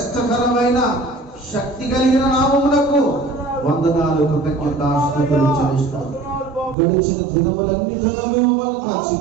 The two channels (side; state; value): left; drops out; at 6.8 s